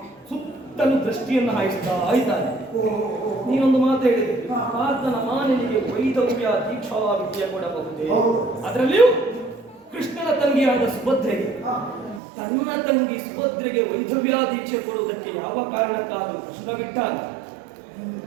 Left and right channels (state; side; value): drops out; left; at 12.2 s